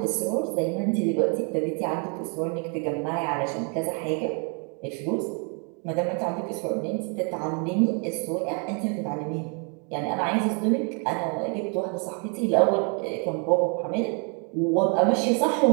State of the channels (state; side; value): quieter; left; 37.4 dB